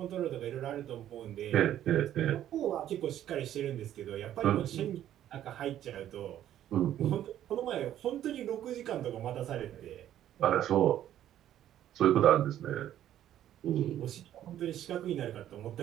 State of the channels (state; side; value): quieter; left; 11.7 dB